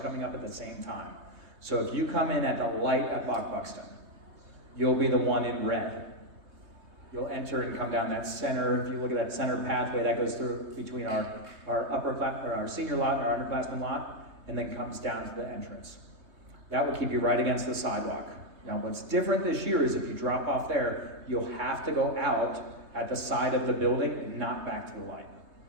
up at the same time. So if you come in at the light at Buxton, you'll be the one in red. You'll enter and come down that center. If you look at that center pathway that goes through between our senior lot and our underclassmen lot, and then comes down to the entrance. That will keep you right against the sidewalk. Now, what's different this year is if you drop off there, you'll have to go out at the side of the building and not back to the light.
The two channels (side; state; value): left; late; 3.2 ms